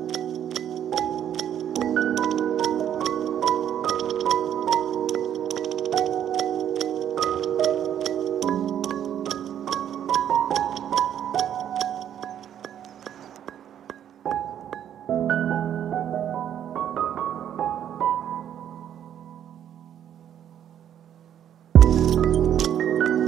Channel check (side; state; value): left; quieter; 10.0 dB